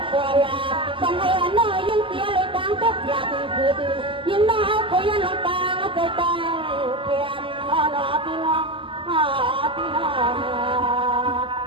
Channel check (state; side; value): late; left; 0.25 ms